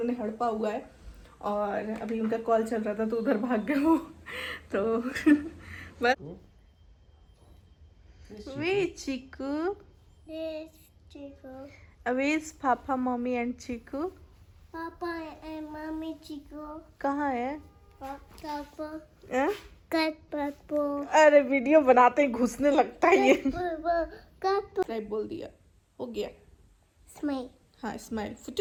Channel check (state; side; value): identical; both; correlation 1.00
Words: ने हड़पा हुआ है और अभी उनका कॉल चल रहा था तो उधर भाग गए वो। तो बस वे chikoo, Where's Papa, Mommy and Chiku? Papa and Mommy Chico. कहाँ है? Papa. Papa. अरे वीडियो बनाते ही घुसने लगता है ये। सब्सक्राइब बोल दिया, हो गया। Smile. हाँ स्माइल,